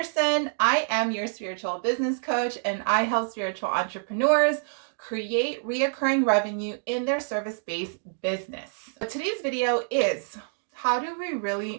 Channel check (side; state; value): left; silent; digital silence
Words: I am your spiritual business coach, and I help spiritual entrepreneurs create reoccurring revenue in their service-based business. Today's video is how do we